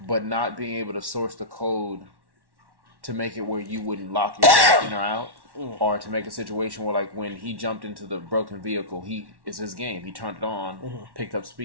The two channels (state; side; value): late; left; 1.1 ms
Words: but not being able to source the code to make it where you wouldn't lock yourself in or out, or to make a situation where, like, when he jumped into the broken vehicle, it's his game. He turned it on, picked up